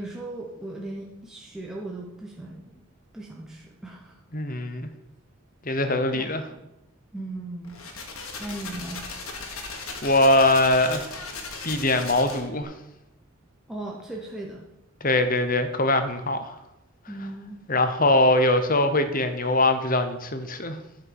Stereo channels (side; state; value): both; normal; correlation -0.16